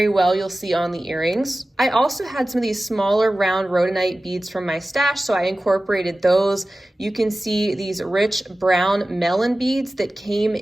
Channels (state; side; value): normal; both; correlation 0.96